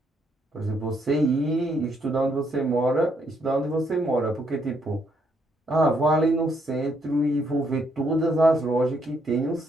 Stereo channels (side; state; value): both; normal; correlation 0.73